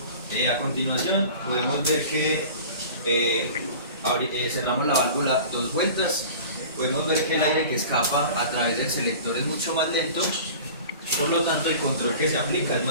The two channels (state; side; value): inverted; both; correlation -0.40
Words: a continuación podemos ver que cerramos la válvula 2 vueltas. Podemos ver que el aire que escapa a través del selector es mucho más lento, por lo tanto el control que se aplica es